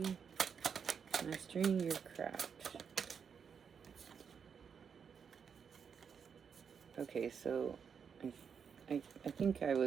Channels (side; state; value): left; quieter; 6.7 dB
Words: Mastering your craft. Okay, so I think I